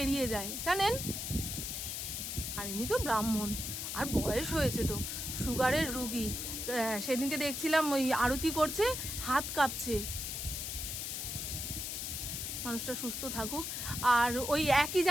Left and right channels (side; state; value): left; noise; hiss, 4 dB below the sound